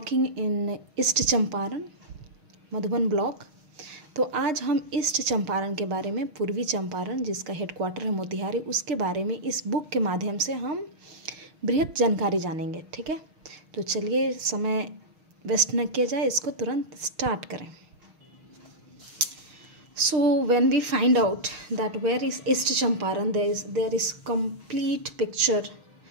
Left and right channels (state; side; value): late; left; 6.5 ms